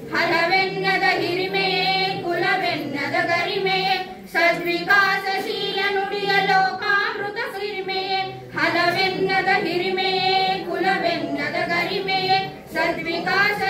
ಹಲವೆನ್ನದ ಹಿರಿಮೆಯೇ ಕುಲವೆನ್ನದ ಗರಿಮೆಯೇ ಸದ್ವಿಕಾಸಶೀಲ ನುಡಿಯ ಲೋಕಾಮೃತ ಸಿರಿಮೆಯೇ ಹಲವೆನ್ನದ ಹಿರಿಮೆಯೇ ಕುಲವೆನ್ನದ ಗರಿಮೆಯೇ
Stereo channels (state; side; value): identical; both; correlation 1.00